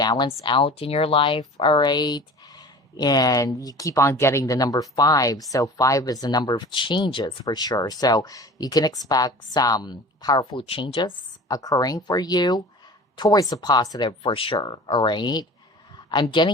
out in your life, all right? And you keep on getting the number five. So five is the number of changes for sure. So you can expect some powerful changes occurring for you towards the positive for sure, all right? I'm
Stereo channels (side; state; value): both; normal; correlation 0.40